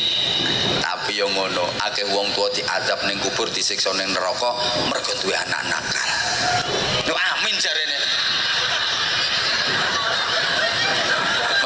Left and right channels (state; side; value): identical; both; correlation 1.00